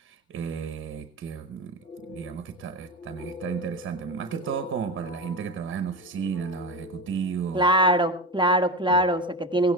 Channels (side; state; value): both; normal; correlation 0.23